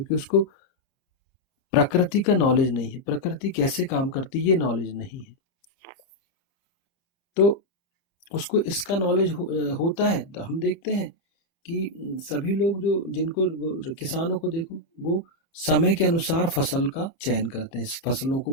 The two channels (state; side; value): late; right; 30 ms